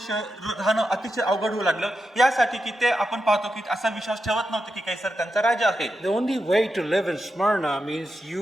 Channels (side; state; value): both; normal; correlation 0.88